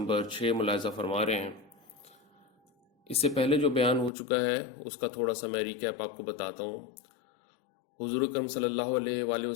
6 ملاحظہ فرما رہے ہیں۔ اس سے پہلے جو بیان ہو چکا ہے اس کا تھوڑا سا میں ریکیپ آپ کو بتاتا ہوں۔ حضور اکرم صلی اللہ علیہ وآلہ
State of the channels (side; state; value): right; drops out; at 4.1 s